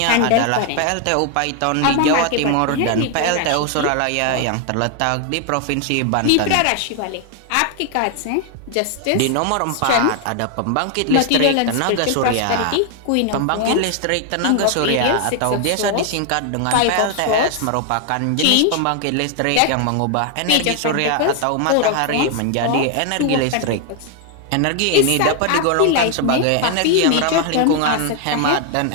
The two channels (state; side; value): different; both; correlation 0.00